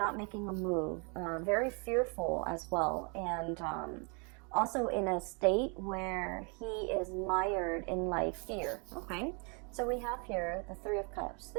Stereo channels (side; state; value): left; quieter; 35.3 dB